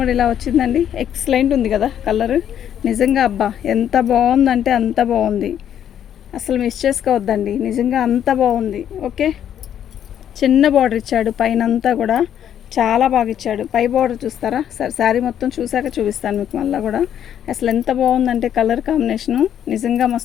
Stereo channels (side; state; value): right; quieter; 9.8 dB